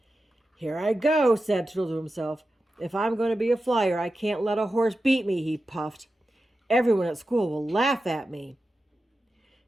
"Here I go," said Tootle to himself. "If I'm going to be a flyer, I can't let a horse beat me," he puffed. "Everyone at school will laugh at me."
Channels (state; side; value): normal; both; correlation 0.92